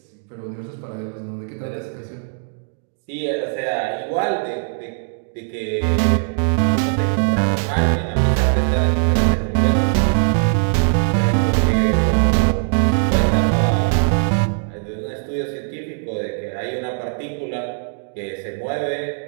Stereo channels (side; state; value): left; silent; digital silence